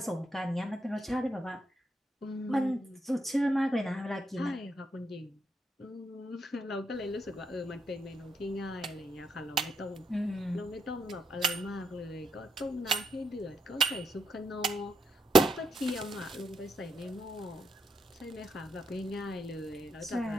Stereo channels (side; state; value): both; normal; correlation 0.79